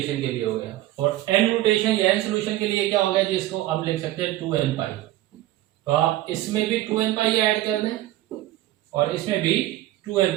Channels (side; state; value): left; quieter; 15.4 dB